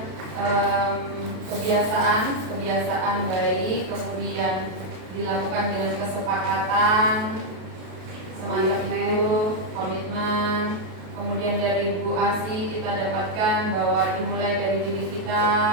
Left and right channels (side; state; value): left; late; 32 ms